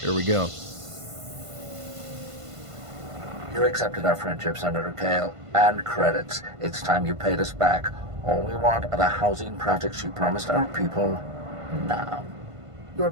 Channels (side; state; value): left; late; 1.5 ms